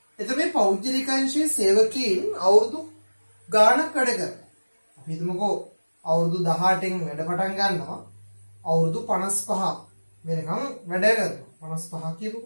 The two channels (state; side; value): inverted; both; correlation -1.00